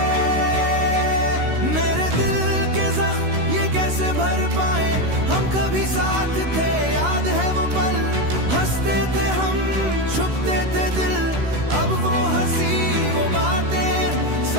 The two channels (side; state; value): left; late; 16 ms